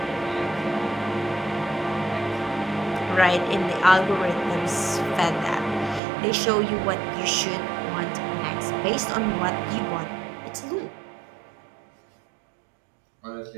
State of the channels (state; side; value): drops out; left; at 6.0 s